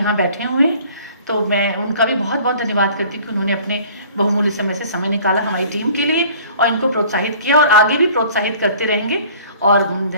बैठे हुए हैं, तो मैं उनका भी बहुत बहुत धन्यवाद करती हूँ कि उन्होंने अपने बहुमूल्य समय से समय निकाला हमारी टीम के लिए और इनको प्रोत्साहित किया और आगे भी प्रोत्साहित करते रहेंगे। और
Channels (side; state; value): both; inverted; correlation -0.50